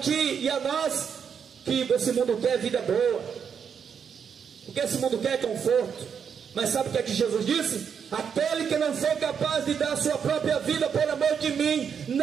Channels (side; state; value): left; quieter; 7.1 dB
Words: e a nós, que esse mundo quer vida boa, porque esse mundo quer conforto. Mas sabe o que é que Jesus disse? Aquele que não for capaz de dar a sua própria vida por amor de mim,